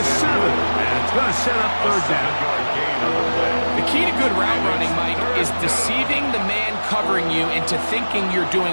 7. And it's going to set up 3rd down. The key to good route running, Mike, is deceiving the man covering you into thinking you're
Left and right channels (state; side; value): inverted; both; correlation -1.00